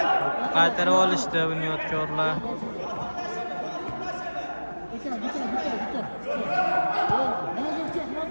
Qaytarib olishdi bunyodkorlar.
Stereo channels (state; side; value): inverted; both; correlation -1.00